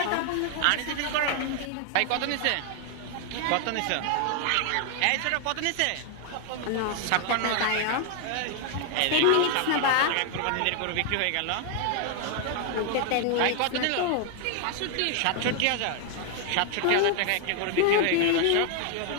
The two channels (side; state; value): both; different; correlation 0.00